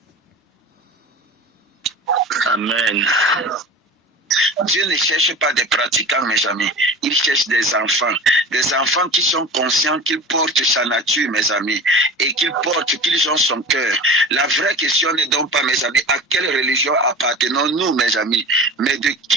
Amen. Dieu ne cherche pas des pratiquants, mes amis. Il cherche des enfants. des enfants qui sont conscients qu'ils portent sa nature, mes amis, et qu'ils ont son cœur. La vraie question n'est donc pas, mes amis, à quelle religion appartenons-nous, mes amis, mais de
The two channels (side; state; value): both; normal; correlation 0.35